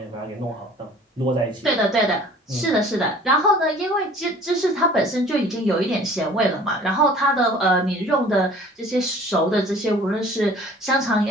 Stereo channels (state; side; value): normal; both; correlation 0.49